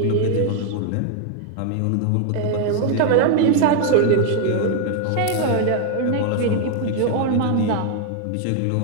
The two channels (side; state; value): both; different; correlation 0.00